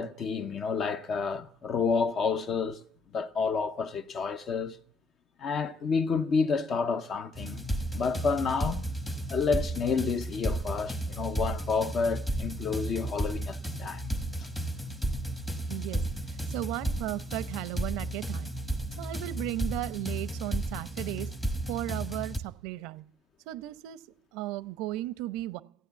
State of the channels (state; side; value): normal; both; correlation 0.67